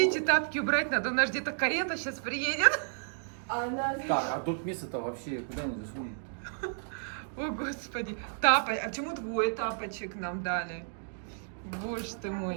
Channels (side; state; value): left; silent; digital silence